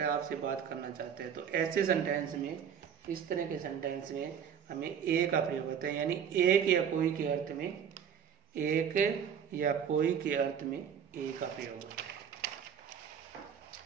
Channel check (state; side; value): quieter; left; 8.0 dB